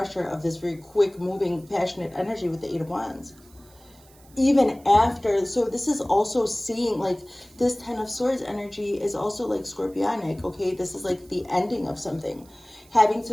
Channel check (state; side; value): noise; right; hiss, 27 dB below the sound